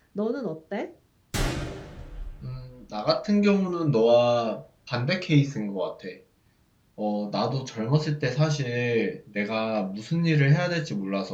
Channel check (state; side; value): identical; both; correlation 1.00